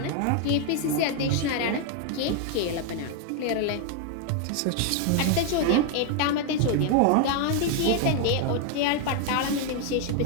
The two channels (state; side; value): different; both; correlation 0.01